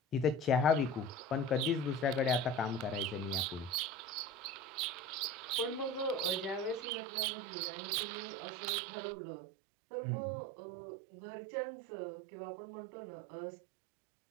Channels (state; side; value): drops out; left; at 6.9 s